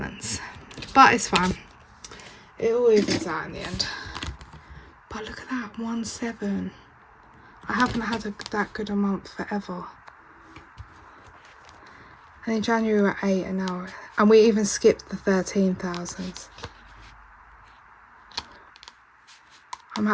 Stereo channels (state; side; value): identical; both; correlation 1.00